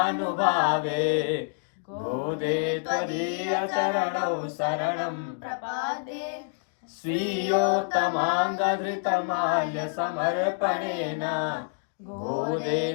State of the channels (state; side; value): silent; right; digital silence